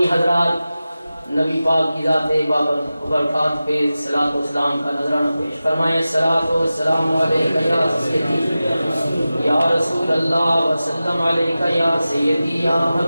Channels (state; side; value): inverted; both; correlation -0.95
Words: حضرات نبی پاک کی ذات بابرکات پہ صلاۃ و سلام کا نذرانہ پیش فرمائیں۔ الصلاۃ والسلام علیکہ یا سیدی یا رسول اللہ وسلم علیکہ یا سیدی یا